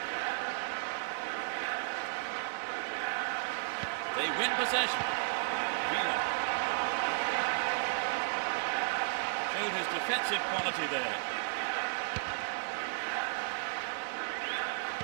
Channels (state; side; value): silent; left; digital silence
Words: They win possession. Villa. Showed his defensive quality there.